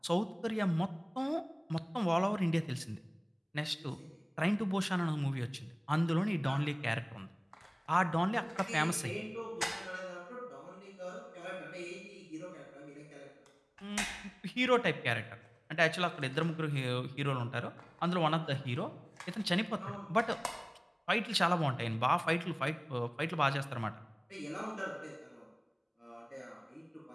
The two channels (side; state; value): both; identical; correlation 1.00